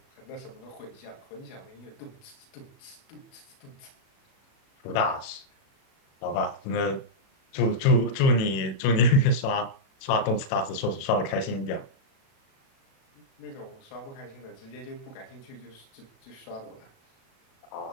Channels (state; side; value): late; right; 37 ms